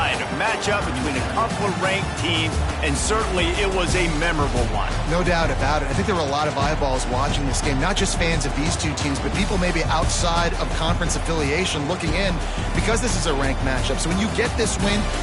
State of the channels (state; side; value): identical; both; correlation 1.00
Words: A matchup between a couple of ranked teams, and certainly it was a memorable one. No doubt about it. I think there were a lot of eyeballs watching this game, not just fans of these two teams, but people maybe outside of conference affiliation looking in because this is a ranked matchup. So when you get this win,